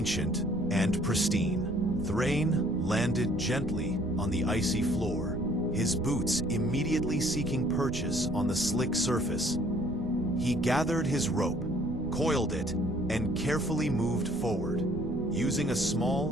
and pristine. Thrain landed gently on the icy floor, his boots immediately seeking purchase on the slick surface. He gathered his rope, coiled it, and carefully moved forward, using a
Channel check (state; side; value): noise; right; rumble, 10 dB below the sound